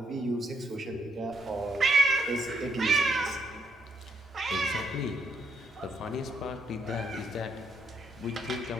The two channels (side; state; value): both; normal; correlation 0.76